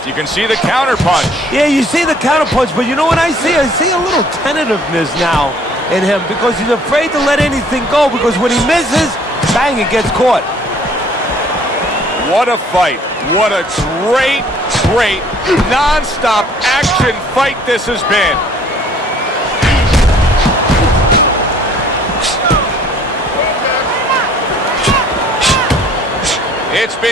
You can see the counter punch. Yeah, you see the counter punch, but you know what I see? I see a little tentativeness now in him because he's afraid to let anything go because when he misses, bang, it gets caught. What a fight. What a great, non-stop action fight this has been.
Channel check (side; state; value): both; normal; correlation 0.57